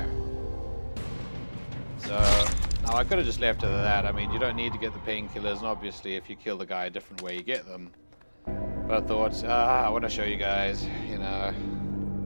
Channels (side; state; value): both; inverted; correlation -1.00